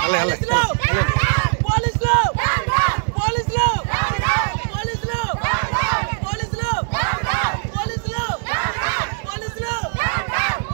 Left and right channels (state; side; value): silent; left; digital silence